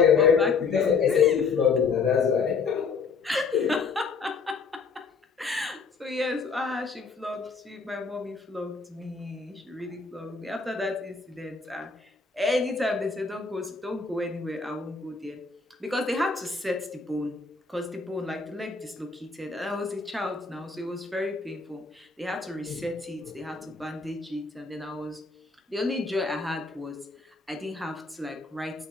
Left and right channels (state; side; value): quieter; right; 4.8 dB